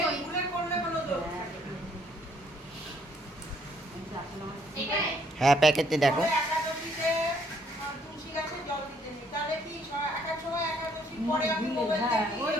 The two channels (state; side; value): normal; both; correlation 0.66